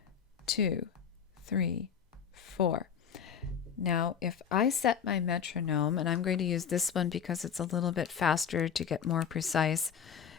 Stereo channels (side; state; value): right; quieter; 7.5 dB